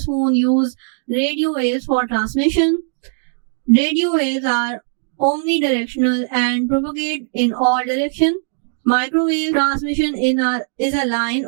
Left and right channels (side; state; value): left; silent; digital silence